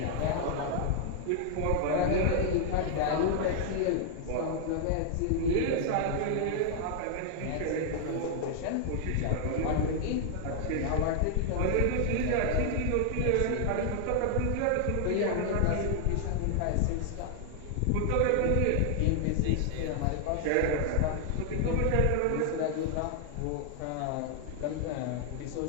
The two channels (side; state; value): both; different; correlation 0.00